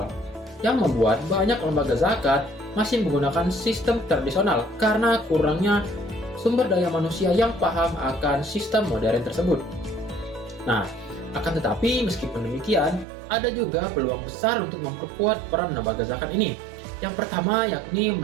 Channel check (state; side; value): drops out; left; at 13.1 s